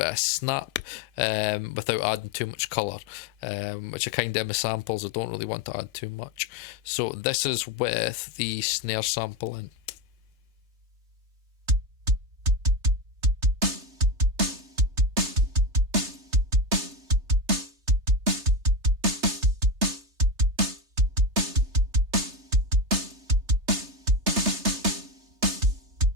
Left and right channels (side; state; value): left; late; 3.3 ms